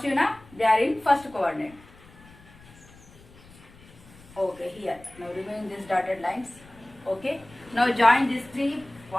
now. They are in first coordinate. Okay, here. Now remove these dotted lines. Okay. Now join these 3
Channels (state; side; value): noise; left; rumble, 23 dB below the sound